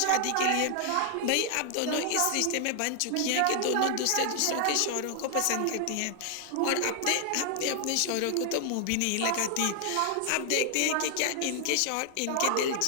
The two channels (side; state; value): both; different; correlation 0.00